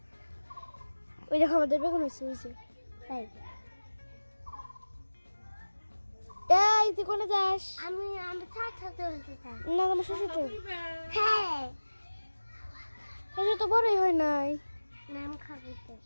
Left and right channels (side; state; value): both; inverted; correlation -1.00